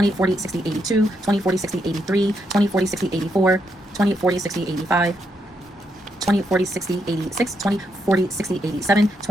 40, 60, 82, 20, 40, 60, 83, 20, 40, 60, 84, 20, 40, 60, 85, 20, 40, 60, 86, 20, 40, 60, 87,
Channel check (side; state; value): both; normal; correlation 0.79